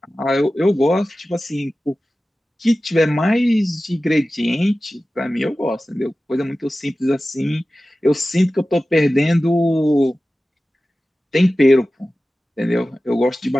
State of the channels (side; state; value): both; normal; correlation 0.95